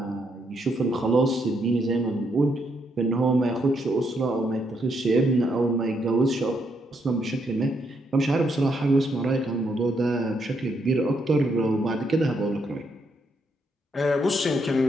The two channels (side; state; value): both; normal; correlation 0.76